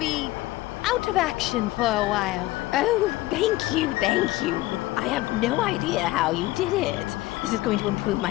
out of action for a while. Oh, thank you, thank you. I have no idea how you did it. This is going to improve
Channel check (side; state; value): right; quieter; 18.2 dB